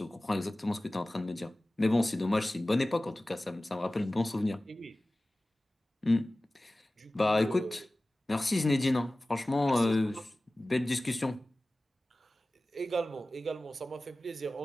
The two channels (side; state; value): both; normal; correlation 0.97